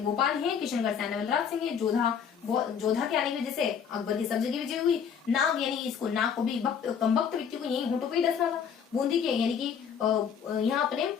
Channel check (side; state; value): right; quieter; 7.4 dB